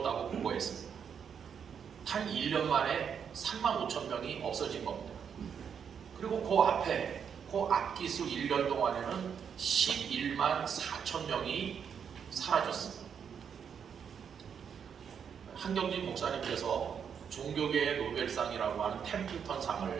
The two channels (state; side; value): quieter; left; 7.4 dB